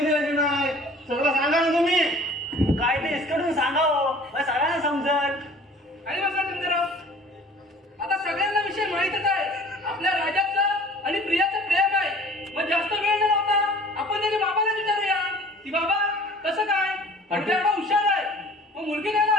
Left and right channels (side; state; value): both; normal; correlation 0.48